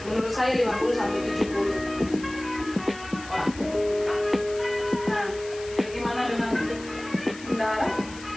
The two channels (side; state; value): left; noise; hiss, 17 dB below the sound